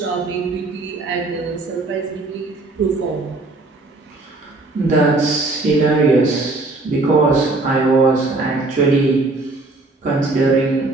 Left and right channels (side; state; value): left; quieter; 3.2 dB